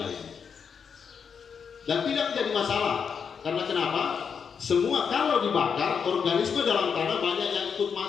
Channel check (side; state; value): right; quieter; 6.6 dB